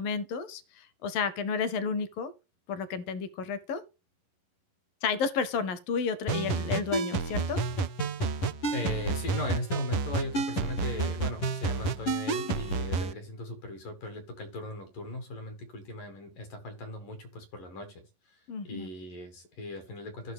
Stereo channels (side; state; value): right; late; 11 ms